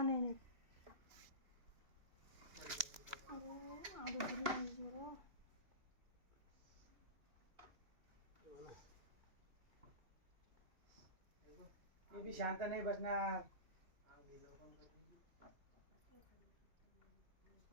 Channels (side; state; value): left; late; 3.0 ms